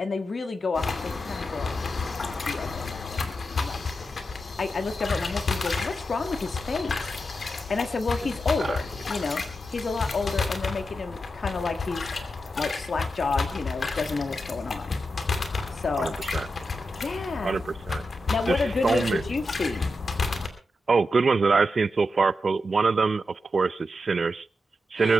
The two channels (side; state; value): both; normal; correlation 0.88